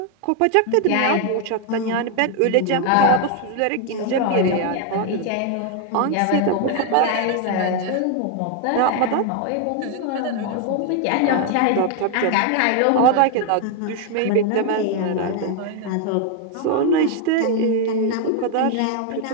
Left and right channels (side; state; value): both; different; correlation 0.00